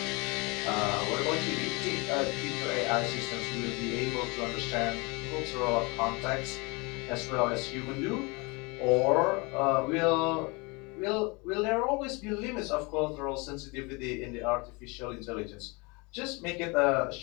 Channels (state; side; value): quieter; right; 28.1 dB